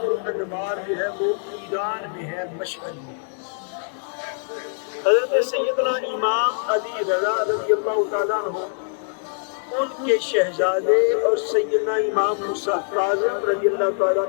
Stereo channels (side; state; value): right; silent; digital silence